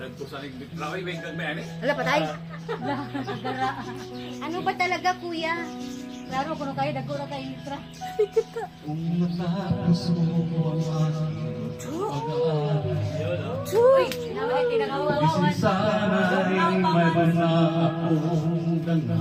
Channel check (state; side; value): identical; both; correlation 1.00